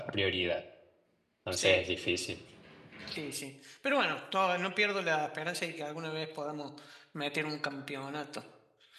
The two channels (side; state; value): both; identical; correlation 1.00